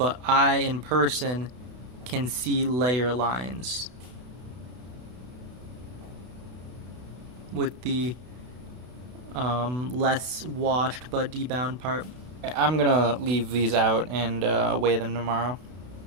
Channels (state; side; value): late; left; 32 ms